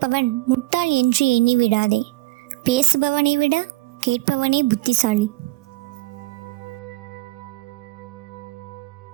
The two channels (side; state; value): left; quieter; 19.6 dB